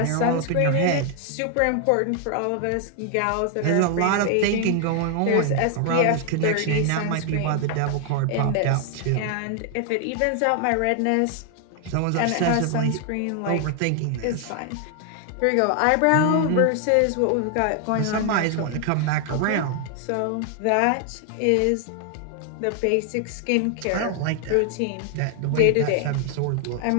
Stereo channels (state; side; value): different; both; correlation 0.00